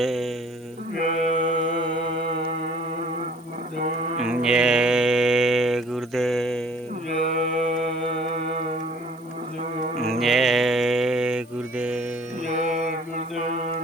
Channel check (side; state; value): right; noise; hiss, 29 dB below the sound